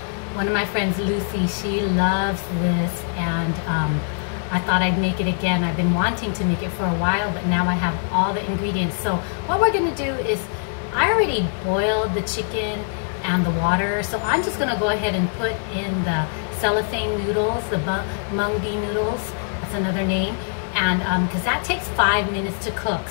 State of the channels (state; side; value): silent; right; 64 dB below the other